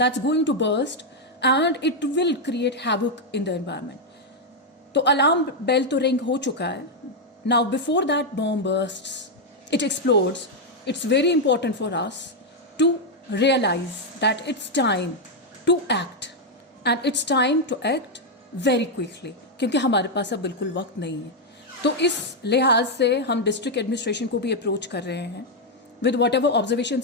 going to burst and it will create havoc in the environment. तो alarm bell तो ring हो चुका है. Now before that bomb bursts, it explodes, it's very important for us to realize that it's time to act, and it's time to act very quickly, क्योंकि हमारे पास अब बिल्कुल वक्त नहीं है. तो इस लिहाज से हम डिस्ट्रिक्ट एडमिनिस्ट्रेशन को भी अप्रोच कर रहे हैं with whatever observations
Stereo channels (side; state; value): both; normal; correlation 0.00